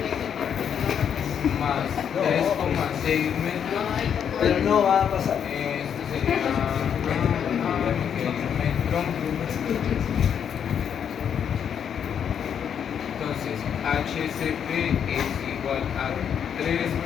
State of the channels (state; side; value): quieter; right; 8.2 dB